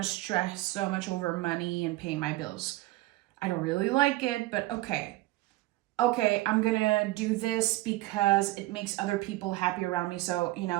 stress so much over money and paying my bills. I don't really like it, but okay. okay, I'm gonna do this because it makes other people happy around me. So,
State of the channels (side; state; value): left; quieter; 18.9 dB